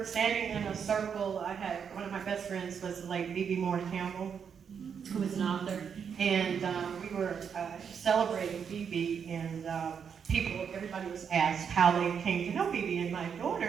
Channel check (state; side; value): quieter; left; 7.1 dB